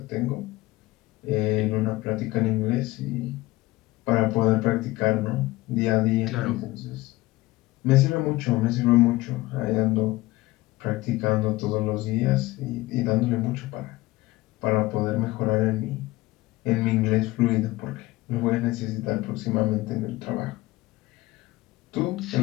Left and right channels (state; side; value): quieter; right; 19.1 dB